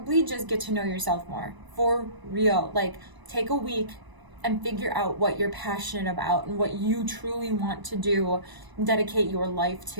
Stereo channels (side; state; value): left; late; 1.0 ms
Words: just get to know yourself more. For real. Like, take a week and figure out what you're passionate about and what you truly want to do, dedicate your life